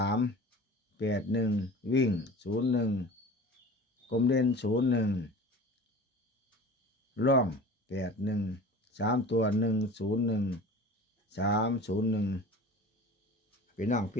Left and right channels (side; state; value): both; normal; correlation 0.39